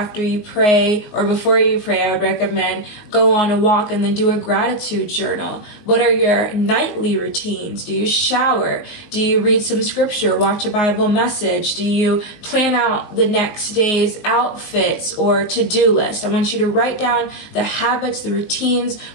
you pray, or before you pray? I would recommend go on a walk and then do a gratitude journal. What are your nightly routines? Do you shower? Do you read some scripture, watch a Bible message? Do you plan out the next day's outfits or to-do list? I want you to write down the habits, the routines,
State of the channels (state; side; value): late; right; 19 ms